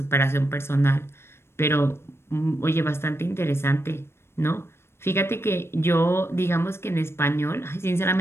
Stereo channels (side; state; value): right; late; 0.12 ms